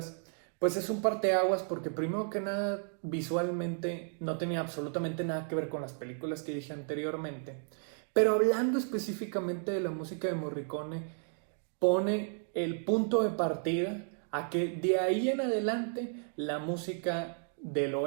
pues es un parteaguas porque primero que nada, visualmente no tenía absolutamente nada que ver con las películas que dije anteriormente. Pero hablando específicamente de la música de Morricone, pone el punto de partida a que de ahí en adelante la música del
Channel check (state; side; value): silent; left; 56 dB below the other